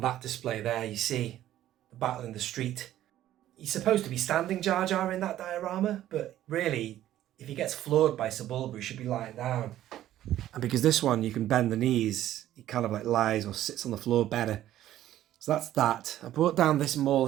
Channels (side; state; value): left; quieter; 13.0 dB